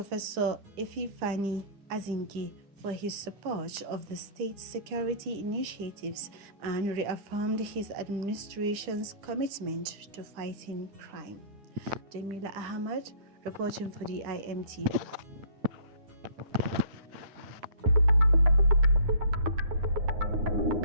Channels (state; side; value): late; left; 10 ms